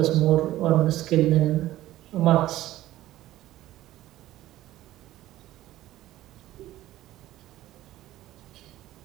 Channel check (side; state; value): left; quieter; 14.9 dB